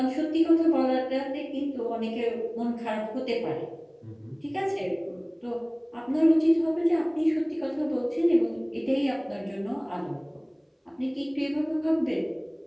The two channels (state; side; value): identical; both; correlation 1.00